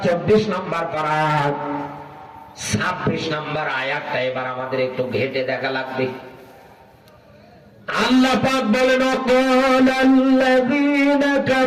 24 নাম্বার পারা, 26 নাম্বার আয়াতটা এবার আমাদের একটু ঘেটে দেখা লাগবে। আল্লাহ পাক বলেন ওয়াকালাল্লাযীনা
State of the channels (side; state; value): both; identical; correlation 1.00